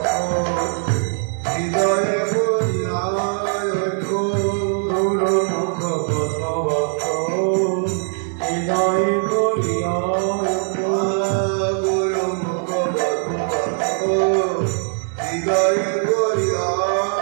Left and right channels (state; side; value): silent; left; 64 dB below the other